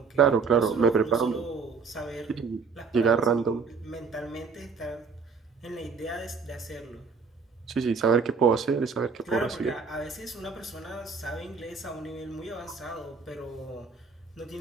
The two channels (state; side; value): quieter; left; 5.3 dB